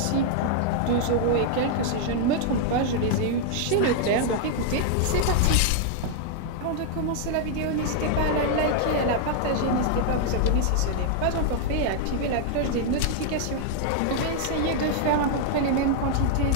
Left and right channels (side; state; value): both; different; correlation 0.00